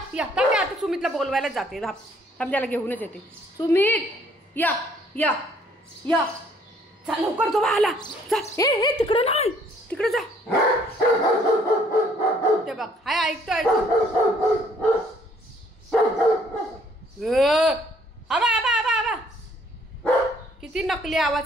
या. थांब आता सुमितला बोलवायलाच जाते. थांब त्याला घेऊनच येते. सुमित या या या. जा लवकर तो आला. जा. ए तिकडं नाही, तिकडे जा. ते बघ हाय ऐकतोय. आबा आबा आबा आबा. किती नकली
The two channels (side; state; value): both; normal; correlation 0.63